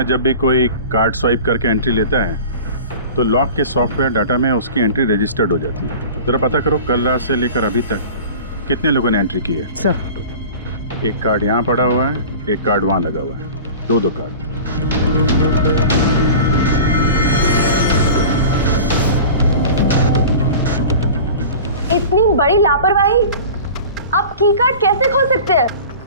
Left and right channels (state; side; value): inverted; both; correlation -0.38